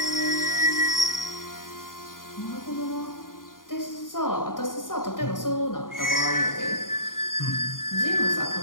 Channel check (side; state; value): right; late; 0.90 ms